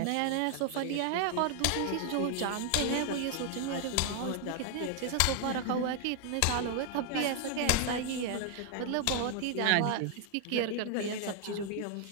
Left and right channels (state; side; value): different; both; correlation 0.00